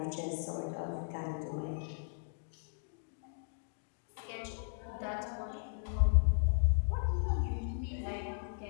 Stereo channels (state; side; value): silent; right; digital silence